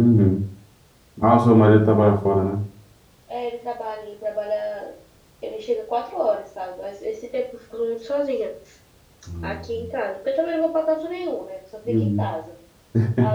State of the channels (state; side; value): identical; both; correlation 1.00